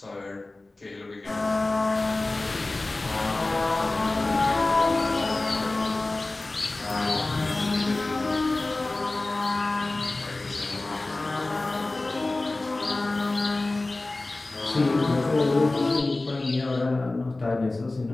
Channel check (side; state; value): right; quieter; 3.0 dB